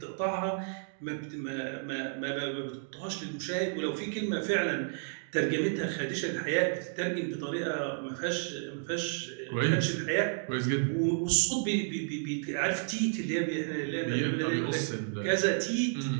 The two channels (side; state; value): left; silent; digital silence